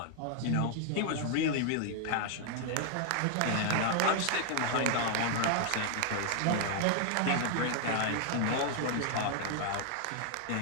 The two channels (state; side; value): different; both; correlation 0.00